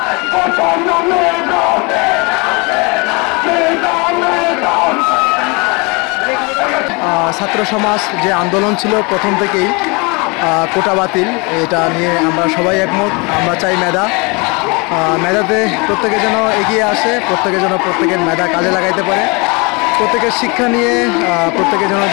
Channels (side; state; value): right; quieter; 29.1 dB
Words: ছাত্র সমাজ যে আন্দোলন ছিল প্রথম থেকেই কোটা বাতিল, এটা নিয়ে আমরা সবাই একমত। আমরা চাই মেধাতে প্রত্যেকে যেন এগিয়ে আসে, প্রত্যেকে যেন প্রত্যেকের মেধা কাজে লাগাইতে পারে, প্রত্যেকের শিক্ষা নিয়ে প্রত্যেকে যেন